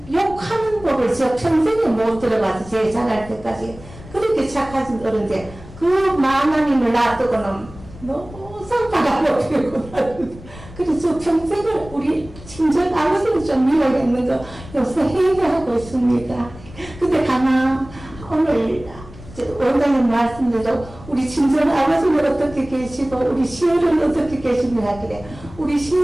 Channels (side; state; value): left; noise; rumble, 17 dB below the sound